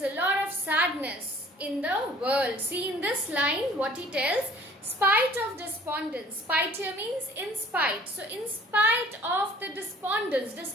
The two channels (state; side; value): normal; both; correlation 0.52